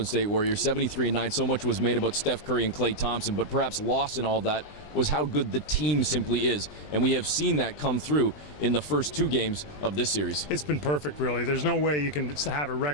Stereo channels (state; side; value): late; right; 20 ms